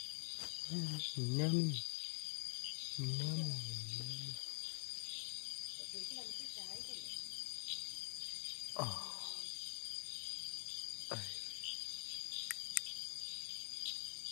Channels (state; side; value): silent; right; digital silence